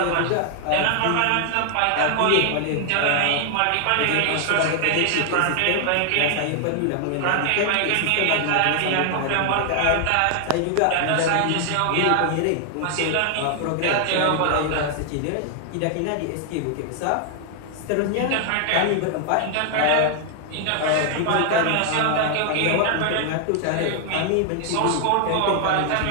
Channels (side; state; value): both; different; correlation 0.00